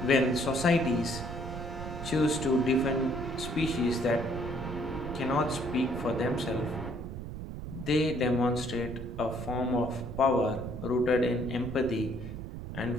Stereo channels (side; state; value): right; noise; rumble, 8 dB below the sound